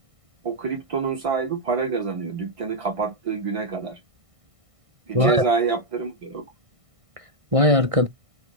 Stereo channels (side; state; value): left; late; 1.6 ms